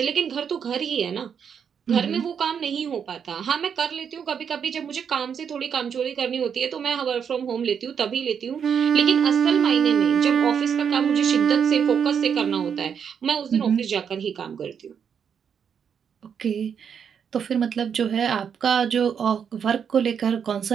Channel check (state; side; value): quieter; left; 7.4 dB